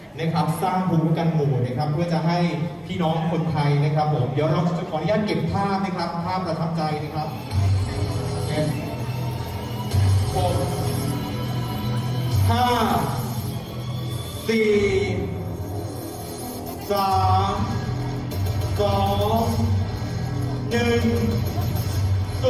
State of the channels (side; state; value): both; identical; correlation 1.00